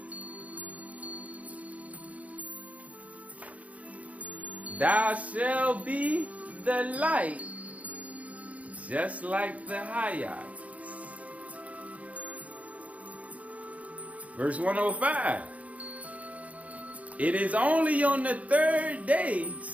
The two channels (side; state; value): left; late; 0.068 ms